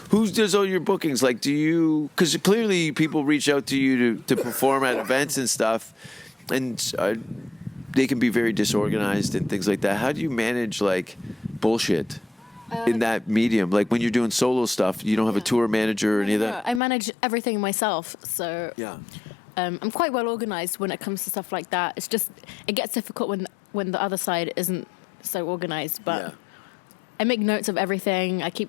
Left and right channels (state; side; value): drops out; right; at 16.8 s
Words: Who does all your bookings? Like, do you? Because clearly people reach out to you to perform at events and stuff, and they can be very disorganized and things like that. How do you manage like bullshit in that medium? Like when you're doing solo stuff, you don't have a tour manager or any of that. I manage everything myself, so Yeah. I'm quite well organized when it comes to stuff like that. It's just it gets difficult when the other side isn't so organized, but. Yeah. I make notes of everything. I keep